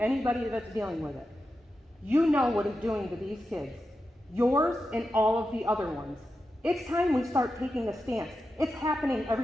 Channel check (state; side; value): normal; both; correlation 0.90